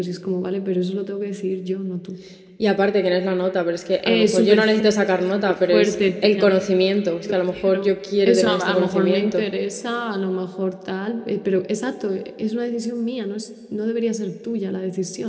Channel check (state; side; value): identical; both; correlation 1.00